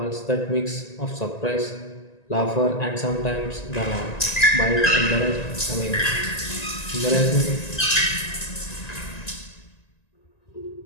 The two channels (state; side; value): late; right; 1.9 ms